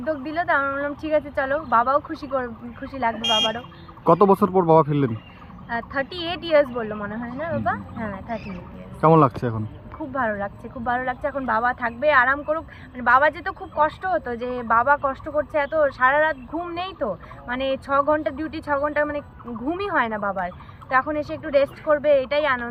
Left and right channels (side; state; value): both; identical; correlation 1.00